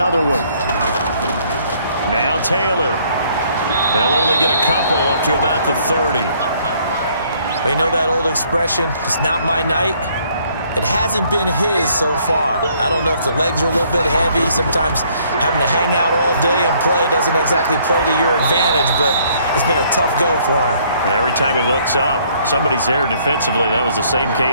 one. Now Taylor. They'll only get a couple up to about the 30. You know that old expression, it's not my night? It hasn't been his so far. I don't know if the legs are a little bit heavy. Sometimes having to hang out all day and play doesn't exactly play to your advantage, but it's been a tough go for him. And every time he looks up, somebody's there defensively. That was the same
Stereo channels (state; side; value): inverted; both; correlation -0.64